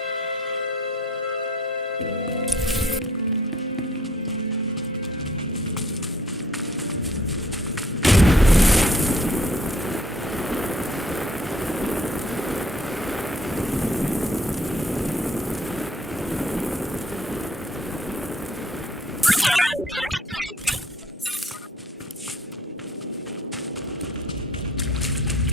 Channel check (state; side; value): normal; both; correlation 0.60